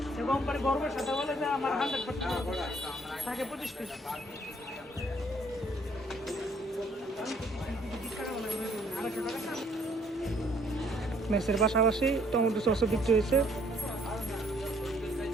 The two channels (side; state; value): both; normal; correlation 0.63